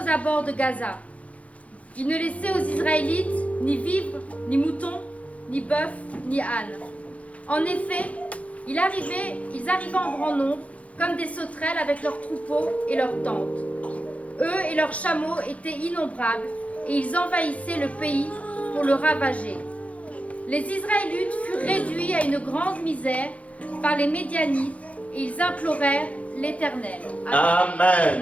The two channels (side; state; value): right; late; 0.065 ms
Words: abords de Gaza. Ils ne laissaient aux Israélites ni vivres, ni moutons, ni bœufs, ni ânes. En effet, ils arrivaient en grand nombre, comme des sauterelles avec leurs troupeaux et leurs tentes. Eux et leurs chameaux étaient innombrables, et ils envahissaient le pays pour le ravager. Les Israélites furent réduits à une grande misère par les Médianites, et ils implorèrent l'Éternel. Amen.